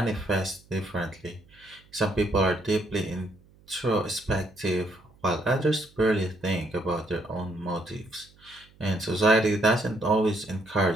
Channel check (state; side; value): noise; right; hum, 28 dB below the sound